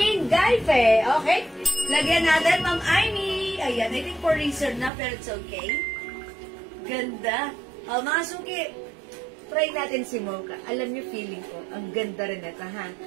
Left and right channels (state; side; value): drops out; left; at 4.9 s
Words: Gaife. Okay? Lagyan natin, Ma'am Amy. Ayan, I think for research na, pero it's okay. Ganda. Mga suki, try natin si Mocha. Alam niyo, feeling ko, ang ganda rin ito, ha?